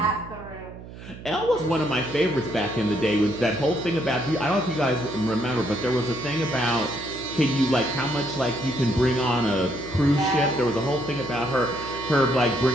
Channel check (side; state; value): right; noise; hum, 15 dB below the sound